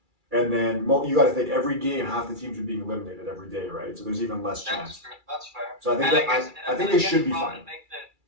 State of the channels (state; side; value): late; left; 2.3 ms